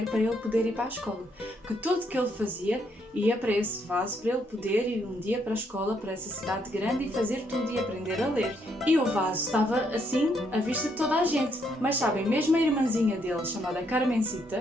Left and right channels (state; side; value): normal; both; correlation 0.73